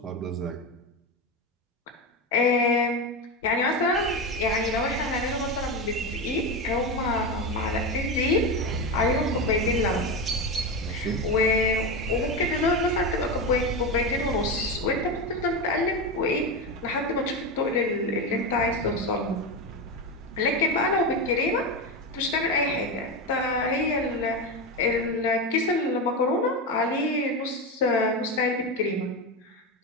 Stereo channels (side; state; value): both; normal; correlation 0.16